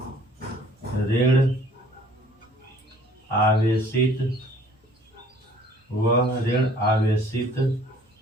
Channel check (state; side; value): normal; both; correlation 0.55